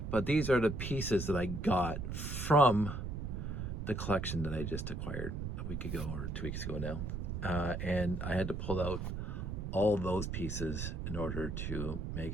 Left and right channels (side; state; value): right; noise; rumble, 4 dB below the sound